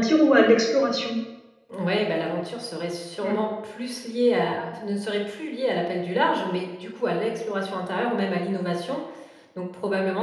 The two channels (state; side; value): identical; both; correlation 1.00